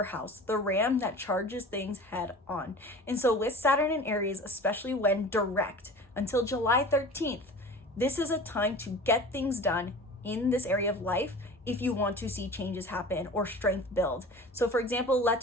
the ram that charges things head on. And so with Saturn and Aries, especially when direct until July 13th, this is a time to get things done in this area of life if you want to see changes happen or strength build. So for example,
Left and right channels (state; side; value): normal; both; correlation 0.38